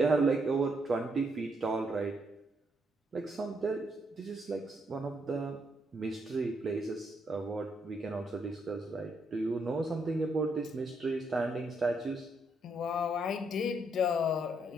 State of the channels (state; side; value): normal; both; correlation 0.75